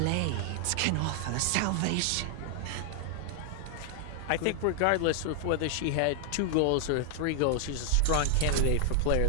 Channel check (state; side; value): different; both; correlation 0.00